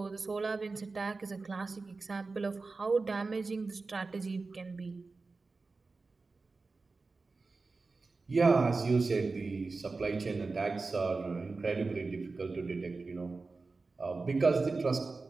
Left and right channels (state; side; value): quieter; left; 3.9 dB